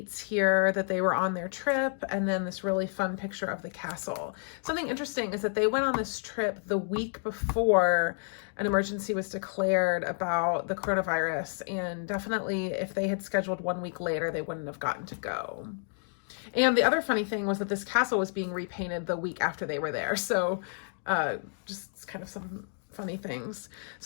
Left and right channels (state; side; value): silent; right; 58 dB below the other